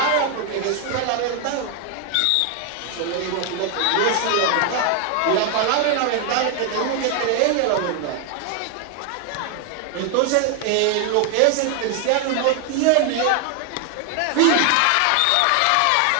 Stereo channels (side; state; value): both; different; correlation 0.01